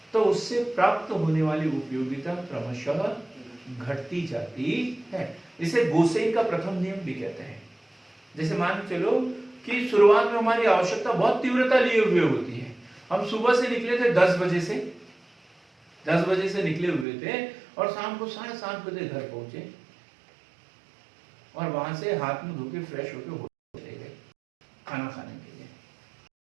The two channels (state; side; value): drops out; left; at 17.1 s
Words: तो उससे प्राप्त होने वाली उपयोगिता क्रमशः घटती जाती है। इसे गोसेन का प्रथम नियम भी कहते हैं। जैसे मान चलो कि शुरुआत में हमारी आवश्यकता बहुत तीव्रता लिए हुए होती है। हम सुबह से निकले थे 10 बजे से, 10 बजे से निकले हुए थे और शाम को 7:30 बजे घर पहुंचे और वहां से हाथ मुंह धो के फ्रेश होके चले गए खाना खाने के लिए।